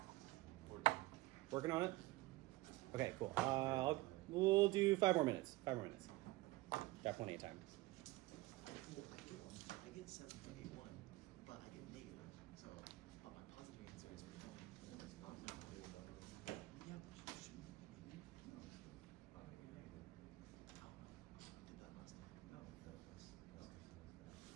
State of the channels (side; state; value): left; quieter; 19.8 dB